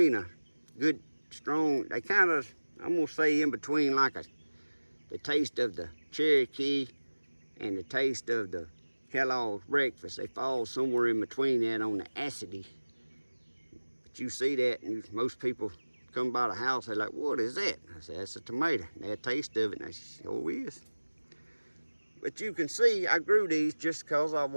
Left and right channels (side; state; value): both; inverted; correlation -1.00